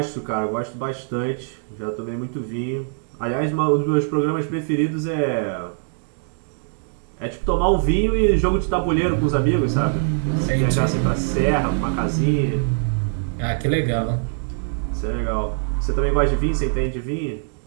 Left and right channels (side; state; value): left; silent; digital silence